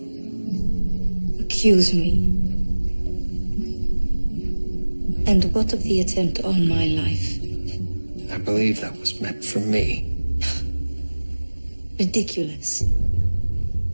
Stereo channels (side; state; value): both; inverted; correlation -1.00